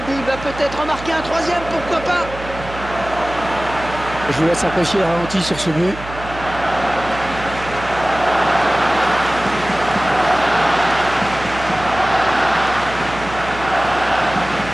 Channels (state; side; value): noise; right; hum, 13 dB below the sound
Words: but. Il va peut-être en marquer un troisième, pourquoi pas? Je vous laisse apprécier le ralenti sur ce but.